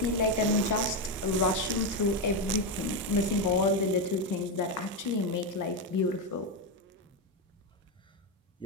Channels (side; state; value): both; normal; correlation 0.08